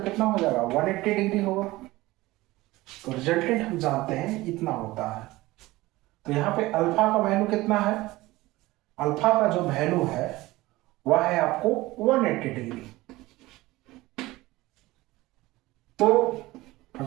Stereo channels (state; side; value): quieter; left; 19.0 dB